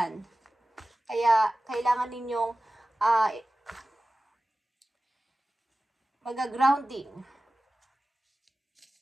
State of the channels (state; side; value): normal; both; correlation 0.96